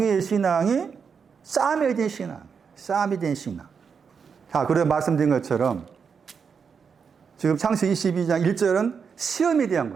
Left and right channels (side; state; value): left; quieter; 6.2 dB